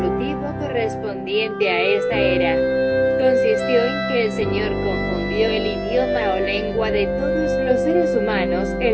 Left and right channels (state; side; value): identical; both; correlation 1.00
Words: correspondiente a esta era consistió en que el Señor confundió el idioma o lengua de todos los seres humanos,